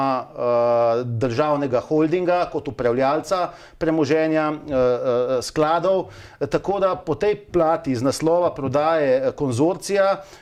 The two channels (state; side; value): identical; both; correlation 1.00